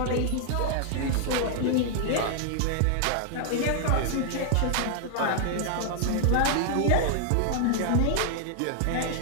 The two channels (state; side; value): different; both; correlation -0.01